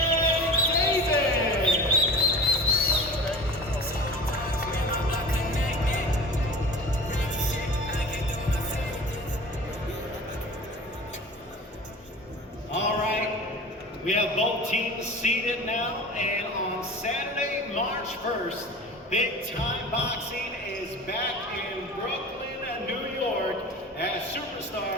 We have both teams seated now, and on Saturday, March 1st, Big Time Boxing is back in Brooklyn, New York, as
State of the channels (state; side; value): normal; both; correlation 0.37